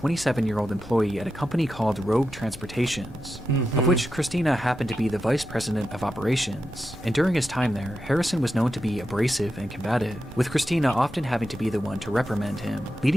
employee at a company called Rogue Transportations, of which Christina happened to be the vice president of operations, and during his time there, Harrison was known to be abrasive and combative, with Christina often having to be the one to reprimand him,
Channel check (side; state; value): both; normal; correlation 0.89